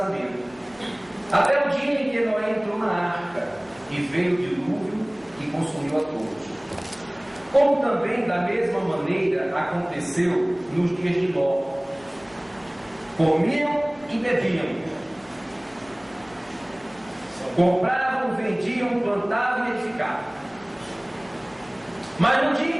até o dia em que Noé entrou na arca, e veio o dilúvio e consumiu a todos. Como também da mesma maneira aconteceu nos dias de Ló. Comiam e bebiam, compravam, vendiam, plantavam e edificavam. Mas no dia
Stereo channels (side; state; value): left; noise; hum, 28 dB below the sound